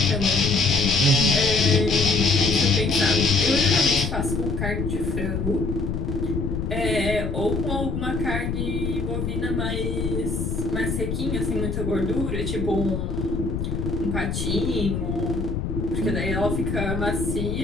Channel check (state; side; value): noise; left; rumble, 2 dB below the sound